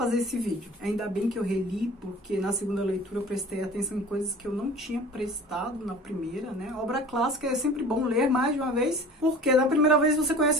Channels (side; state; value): both; normal; correlation 0.43